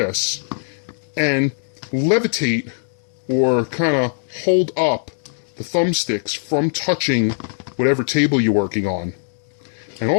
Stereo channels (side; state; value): right; silent; digital silence